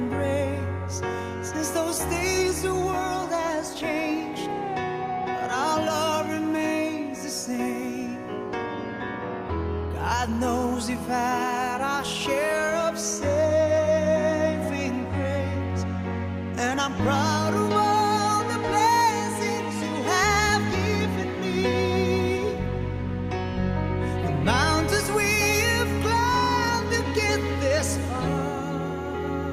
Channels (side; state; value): both; identical; correlation 1.00